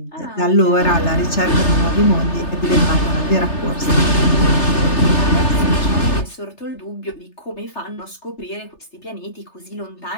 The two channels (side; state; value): right; late; 3.3 ms